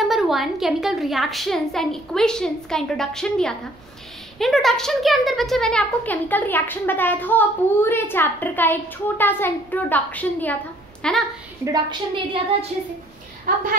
1 chemical reactions and equations का introduction दिया था। इंट्रोडक्शन के अंदर बच्चे मैंने आपको केमिकल रिएक्शन बताया था और पूरे चैप्टर का एक छोटा सा इंट्रोडक्शन दिया था, है ना। इंट्रोडक्शन दे दिया था अच्छे से। अब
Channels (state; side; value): noise; right; rumble, 30 dB below the sound